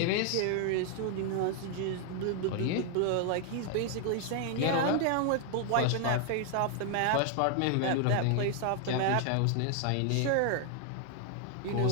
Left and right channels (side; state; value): both; different; correlation 0.00